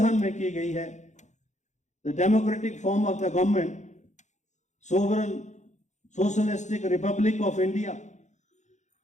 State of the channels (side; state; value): right; late; 0.34 ms